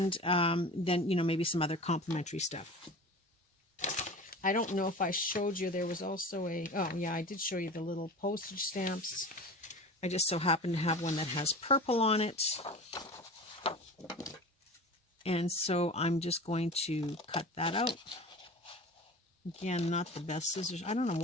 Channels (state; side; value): normal; both; correlation 0.35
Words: then, you know, maybe some other complementary stuff. I don't know if I showed you, there was also oh yeah, I did show you the little postage stamps. I just so happen to have one that has purple on it. And so I'm just going to cut that out. Again, not the best scissors. I don't know